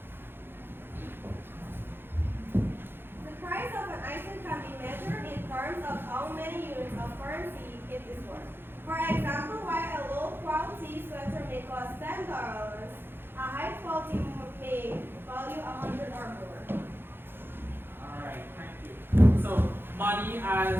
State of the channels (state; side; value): late; left; 0.10 ms